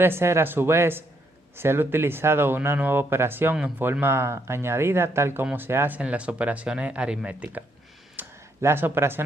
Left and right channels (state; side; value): normal; both; correlation 0.75